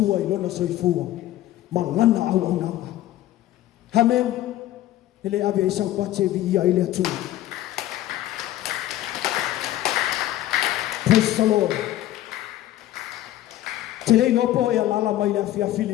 i lona soifua ma ngana au ananga. Amen. Ele ave isau pate vi ia i le atua. Praise the Lord. Te rei nopo e alala mai le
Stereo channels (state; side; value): quieter; right; 14.1 dB